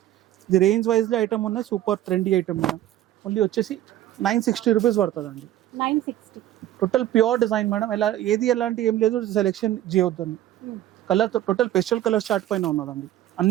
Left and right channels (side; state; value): left; quieter; 13.1 dB